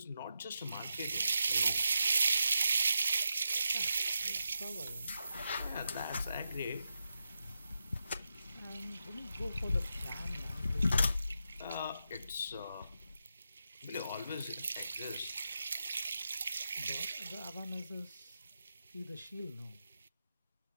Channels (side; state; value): both; inverted; correlation -0.88